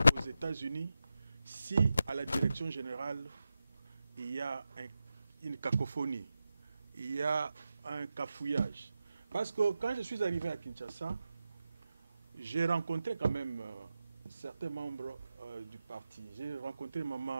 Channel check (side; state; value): both; inverted; correlation -0.93